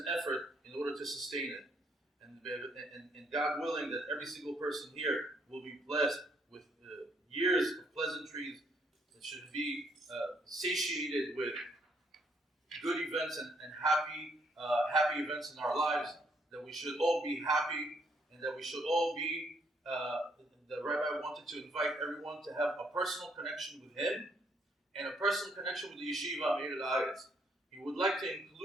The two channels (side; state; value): both; normal; correlation 0.70